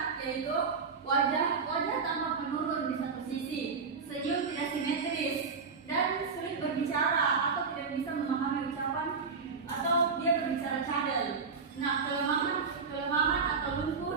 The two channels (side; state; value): left; quieter; 5.2 dB